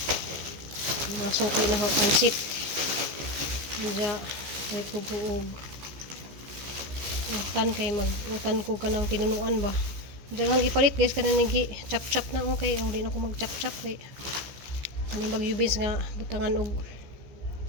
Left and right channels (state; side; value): late; left; 14 ms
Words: Mga sungkay na ho pansit. Diya, kahit ko buog. Utan kay mag-utan ko ka ng tinunuan ba. Diya hang ipalit guys. Kana nigi chop-chop na okay. O, di na ako mag-chop-chop kay. Kaning bagyubins nga butangan og